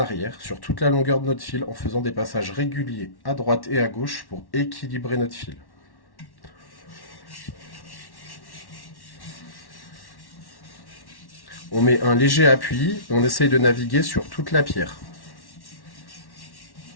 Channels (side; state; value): right; late; 1.1 ms